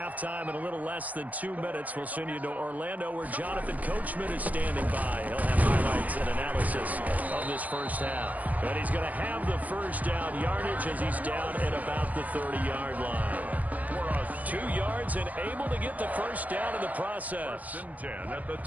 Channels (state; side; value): late; left; 0.075 ms